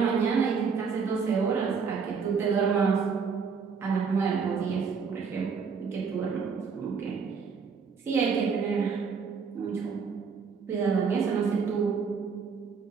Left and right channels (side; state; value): left; quieter; 5.7 dB